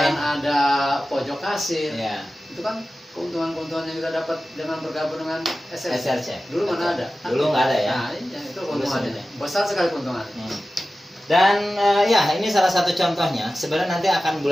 ada pojok kasir. ya. Itu kan keuntungan-keuntungan yang kita dapat dengan bergabung dengan SRC. SRC. Dulu mana ada? Dulu nggak ada ya. Nah, iya, itu keuntungannya. sebenarnya. Besar sekali keuntungannya. Dan ya ini salah satu contohnya. Sebenarnya nanti akan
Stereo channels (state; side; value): normal; both; correlation 0.94